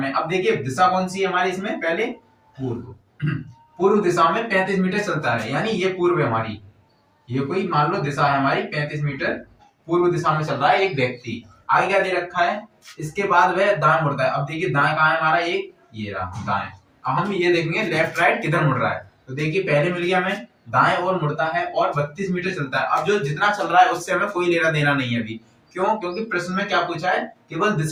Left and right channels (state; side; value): identical; both; correlation 1.00